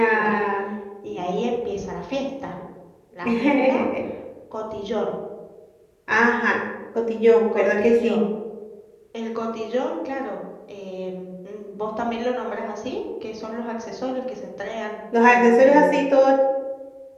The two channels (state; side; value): identical; both; correlation 1.00